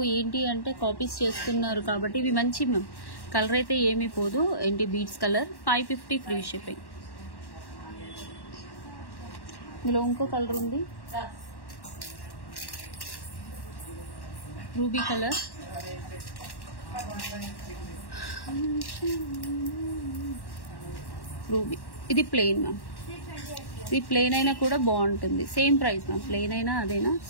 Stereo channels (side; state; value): right; late; 1.1 ms